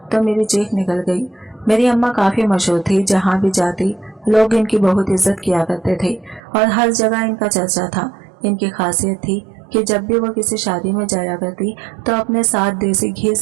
तो मेरी चीख निकल गई। मेरी अम्मा काफी मशहूर थी, जहाँ भी जाती लोग इनकी बहुत इज्जत किया करते थे और हर जगह इनका चर्चा था। इनकी खासियत थी कि जब भी वो किसी शादी में जाया करती तो अपने साथ देसी घी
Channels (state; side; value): drops out; left; at 6.4 s